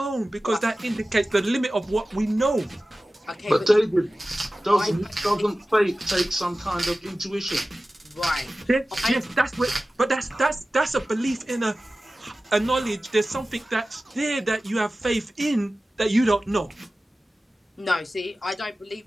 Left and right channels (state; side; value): normal; both; correlation 0.96